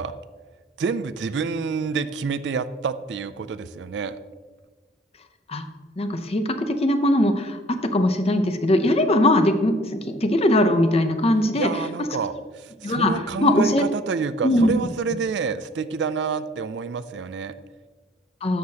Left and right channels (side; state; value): both; normal; correlation 0.55